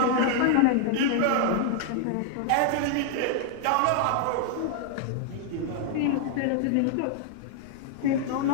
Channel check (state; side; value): different; both; correlation -0.01